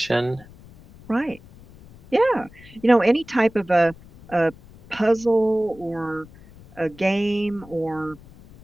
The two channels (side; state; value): left; noise; rumble, 22 dB below the sound